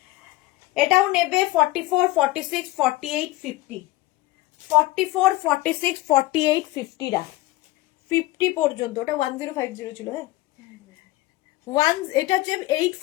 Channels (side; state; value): right; quieter; 18.4 dB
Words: এটাও নেবে 44, 46, 48, 50, 44, 46, 48, 50 রা 50 পর্যন্ত। ওটা 1050 ছিল। হ্যাঁ, এটা হচ্ছে